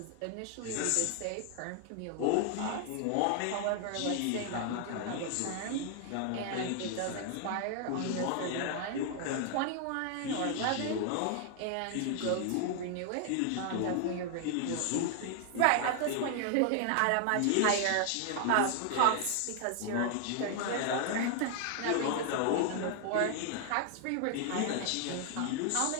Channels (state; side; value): different; both; correlation 0.00